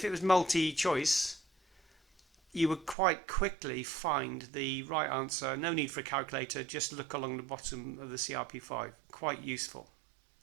it was multi-choice, you would quite quickly find the right answer. No need for a calculator, just look along the bottom of the CRP5. Quite useful.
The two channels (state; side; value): drops out; left; at 3.0 s